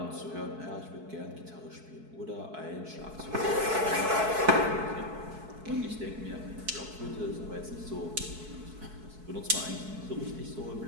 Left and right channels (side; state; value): left; late; 4.6 ms